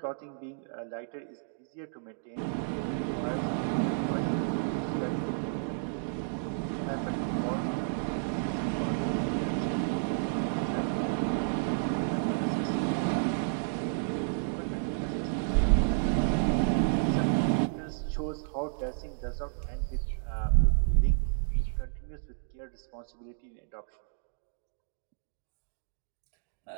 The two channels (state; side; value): silent; left; digital silence